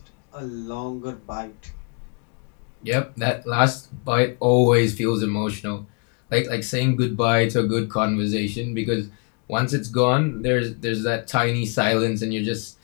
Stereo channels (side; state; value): right; quieter; 37.3 dB